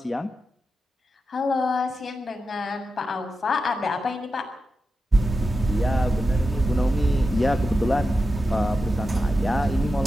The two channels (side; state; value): both; normal; correlation 0.90